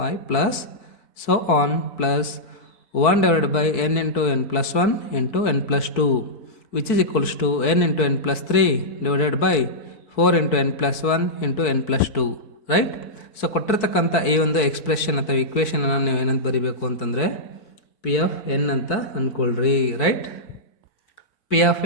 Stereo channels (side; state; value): right; late; 4.7 ms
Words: plus so on plus 1/n into n plus 1 into n plus 2 which is equals to n into n plus 3 divided by 4 into n plus 1 into n plus 2. Right? So ಕೊಟ್ಟಿರ್ತಕ್ಕಂಥ ಈ ಒಂದು expression ಅಥವಾ ಇಕ್ವೇಷನನ್ನು ನೀವು ಏನಂತ ಬರೀಬೇಕು ಅಂತಂದರೆ, P of N ಅಂತ ಅಂದ್ಕೊಳ್ರಿ. Right? P of